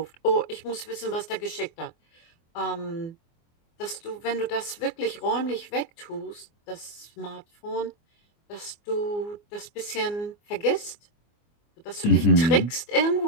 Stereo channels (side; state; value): right; late; 24 ms